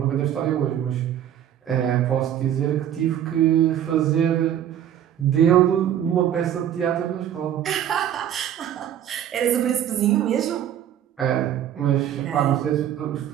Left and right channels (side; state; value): left; quieter; 10.5 dB